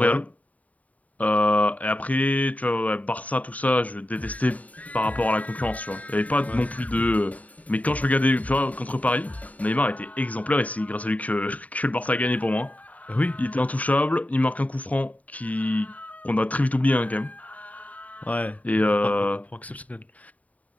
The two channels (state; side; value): late; right; 0.070 ms